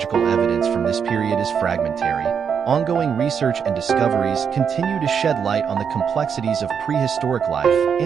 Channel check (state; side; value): quieter; left; 7.0 dB